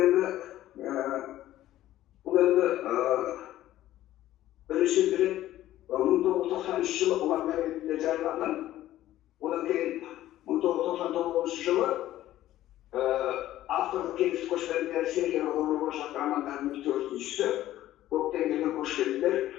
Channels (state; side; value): quieter; right; 14.0 dB